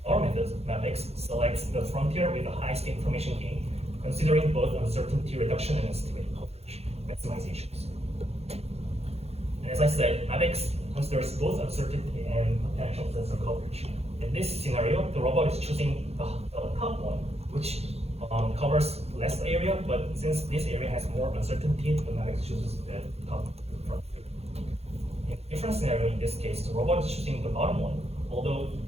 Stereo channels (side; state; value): left; late; 0.30 ms